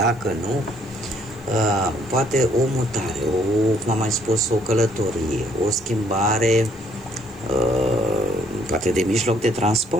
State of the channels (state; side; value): noise; left; hiss, 30 dB below the sound